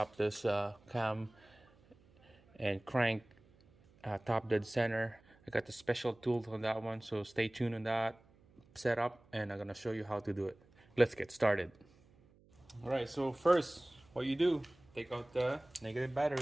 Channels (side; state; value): right; noise; hum, 29 dB below the sound